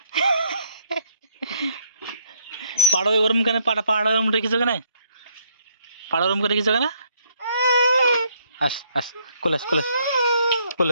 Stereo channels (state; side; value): inverted; both; correlation -0.68